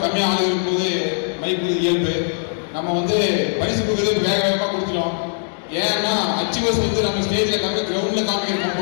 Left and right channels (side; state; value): right; silent; digital silence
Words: கம்மியாக ஆள் இருக்கும்போது மைக் இயல்பு. நம்ம வந்து பரிசு கொடுக்குறது வேக வேகமாக கொடுத்துட்டோம். ஏன்னா அச்சீவர்ஸ் வந்து நம்ம ஸ்டேஜில் கிரவுண்டில் காமிக்கிற